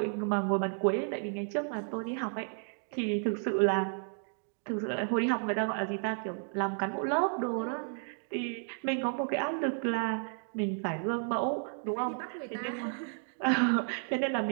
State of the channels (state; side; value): silent; left; 56 dB below the other